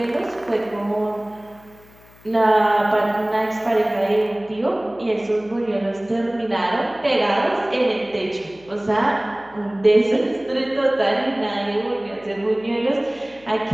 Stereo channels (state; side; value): noise; left; hum, 26 dB below the sound